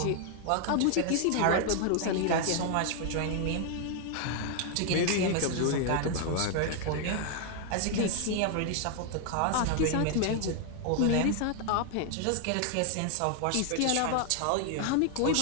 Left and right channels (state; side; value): different; both; correlation 0.00